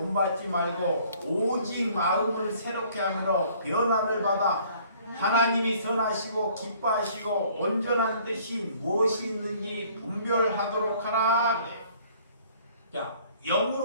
말고 오직 마음을 새롭게 하므로 변화를 받아 하나님이 선하시고 기뻐하시고 온전한 뜻이 무엇이 있는지 분별하도록 하라. 자,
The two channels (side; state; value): both; inverted; correlation -0.57